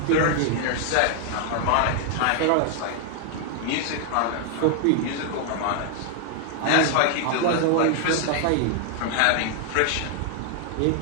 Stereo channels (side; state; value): both; different; correlation 0.00